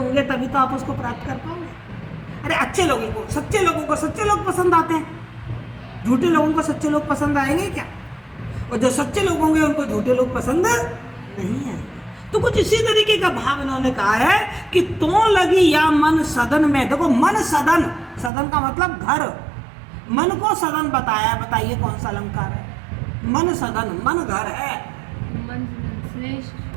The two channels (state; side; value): drops out; left; at 18.3 s